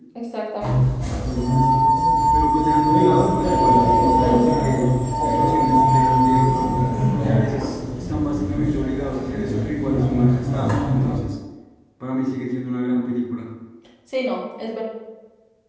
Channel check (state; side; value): identical; both; correlation 1.00